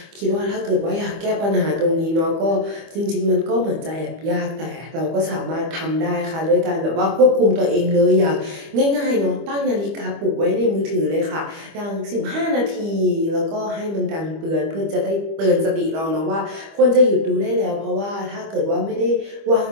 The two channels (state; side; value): late; left; 25 ms